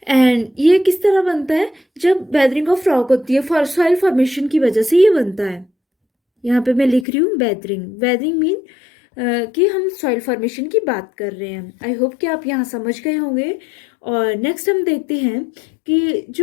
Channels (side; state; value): right; drops out; at 7.1 s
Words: एंड ये किस तरह बनता है, जब बेदरिंग ऑफ रॉक होती है फॉर सॉइल फॉर्मेशन की वजह से ये बनता है। यहाँ पे मैं लिख रही हूँ बेदरिंग। बेदरिंग मीन कि हम सॉइल फॉर्मेशन की बात कर रहे हैं। आई होप कि आप यहाँ समझ गए होंगे। और नेक्स्ट हम देखते हैं कि